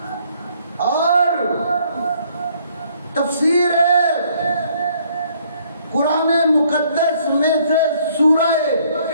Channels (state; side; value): inverted; both; correlation -0.64